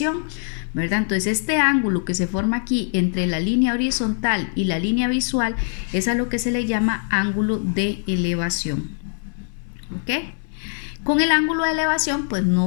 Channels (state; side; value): silent; right; 64 dB below the other